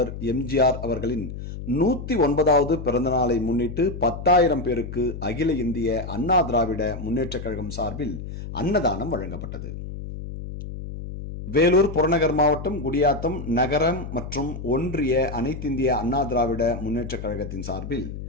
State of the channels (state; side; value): noise; left; hum, 9 dB below the sound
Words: எம்ஜிஆர் அவர்களின் 109வது பிறந்தநாளை முன்னிட்டு 10,000 பேருக்கு அகில இந்திய அண்ணா திராவிட முன்னேற்றக் கழகம் சார்பில் அன்னதானம் வழங்கப்பட்டது. வேலூர் புறநகர் மாவட்டம் குடியாத்தம் நகரம் மற்றும் ஒன்றிய அனைத்திந்திய அண்ணா திராவிட முன்னேற்றக் கழகத்தின் சார்பில்